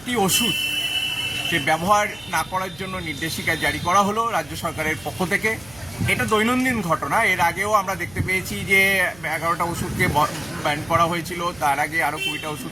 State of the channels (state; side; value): noise; right; hum, 22 dB below the sound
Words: ওষুধ যে ব্যবহার না করার জন্য নির্দেশিকা জারি করা হলো রাজ্য সরকারের পক্ষ থেকে। এটা দৈনন্দিন ঘটনা। এর আগেও আমরা দেখতে পেয়েছি যে 11টা ওষুধকে ব্যান করা হয়েছিল, তার আগে আরও 20টা